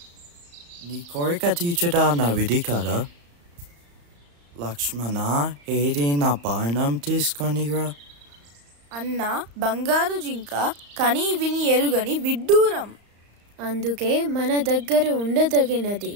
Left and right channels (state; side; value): late; left; 35 ms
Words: నీ కోరిక తీర్చడా నా విధి కదా. లక్ష్మణ, ఏది నా బాణం తీసుకొనిరా. అన్న, బంగారు జింక కని విని ఎరుగని విడ్డూరం. అందుకే మన దగ్గర ఉండదగినది.